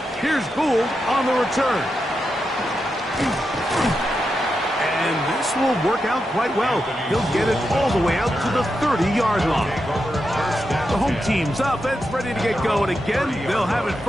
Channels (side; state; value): both; normal; correlation 0.87